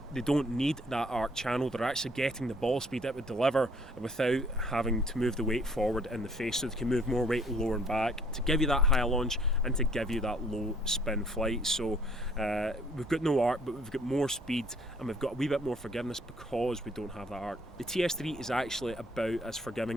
they don't need that arc channel. They're actually getting the ball speed it would deliver without having to move the weight forward in the face, so they can move more weight lower and back to give you that high launch and to give you that low spin flight. So we've got no arc, but we've got more speed and we've got a wee bit more forgiveness because we don't have that arc. The TS3 is actually about as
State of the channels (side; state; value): both; normal; correlation 0.60